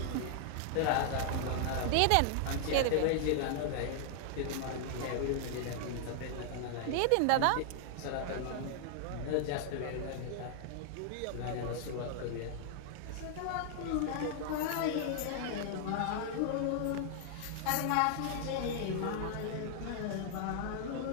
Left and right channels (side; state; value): both; different; correlation -0.01